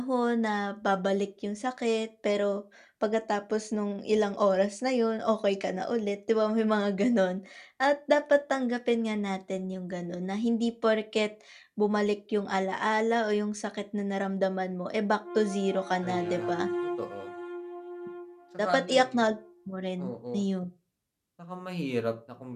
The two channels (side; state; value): both; identical; correlation 1.00